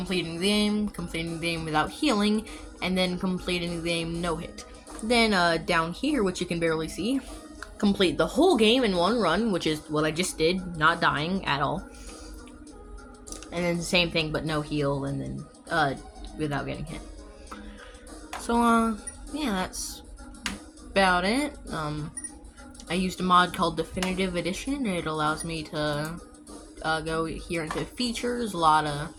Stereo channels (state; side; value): identical; both; correlation 1.00